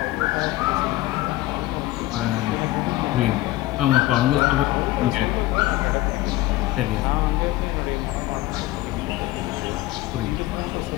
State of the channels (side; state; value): right; quieter; 17.3 dB